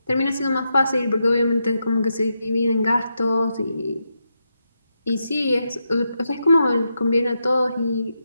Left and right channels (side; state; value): both; inverted; correlation -0.84